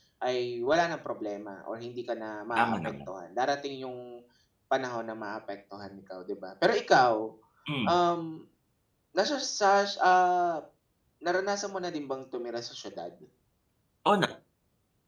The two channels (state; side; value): identical; both; correlation 1.00